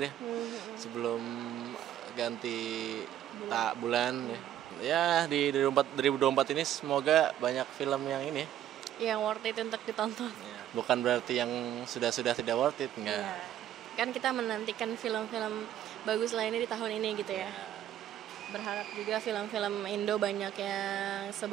ya sebelum ganti bulan ya. Ya di 2024 ini semoga banyak film yang ini ya. Yang worth it untuk ditonton. Ya, bukan berarti yang sudah tidak worth it, enggak. Iya. Kan kita menantikan film-film bagus lainnya di tahun ini gitu ya. Berharap juga film-film Indo banyak yang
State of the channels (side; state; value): left; quieter; 11.4 dB